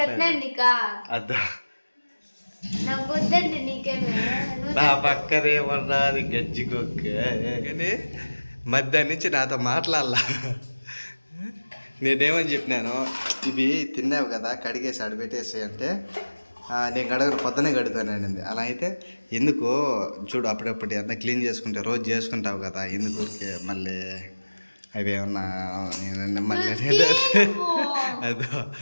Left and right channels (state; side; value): inverted; both; correlation -1.00